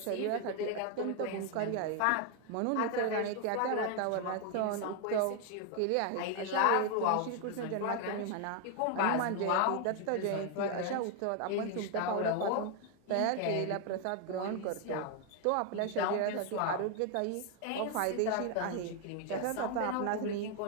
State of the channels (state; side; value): different; both; correlation 0.01